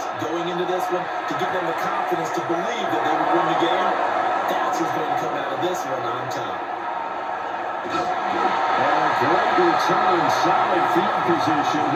going into this one to give them the confidence to believe that they would win the game? That's who's going to come out of this one on top. And a great return, solid field position.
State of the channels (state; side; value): identical; both; correlation 1.00